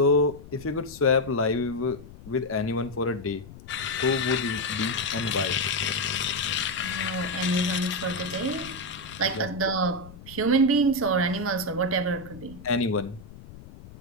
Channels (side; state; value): left; noise; rumble, 17 dB below the sound